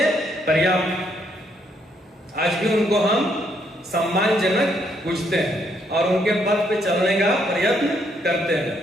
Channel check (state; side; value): normal; both; correlation 0.72